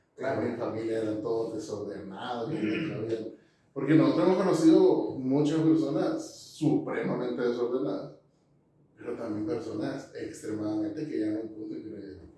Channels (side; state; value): both; identical; correlation 1.00